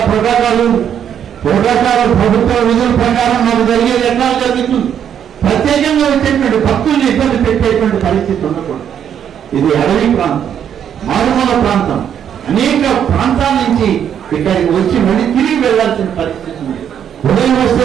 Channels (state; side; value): quieter; left; 8.9 dB